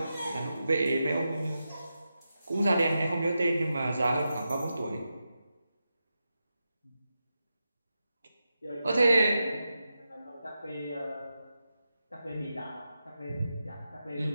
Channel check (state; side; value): inverted; both; correlation -0.89